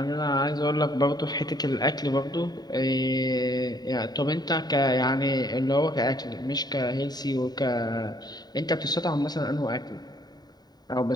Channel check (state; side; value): late; right; 0.20 ms